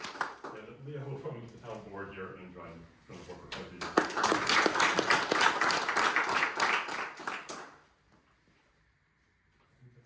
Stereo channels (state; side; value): identical; both; correlation 1.00